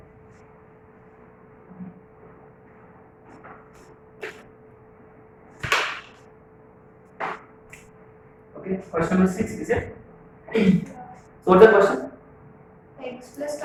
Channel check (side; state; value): both; identical; correlation 1.00